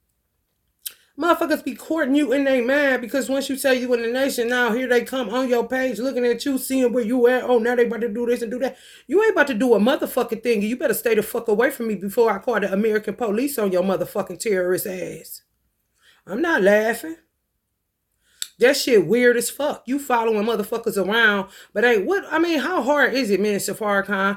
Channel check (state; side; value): identical; both; correlation 1.00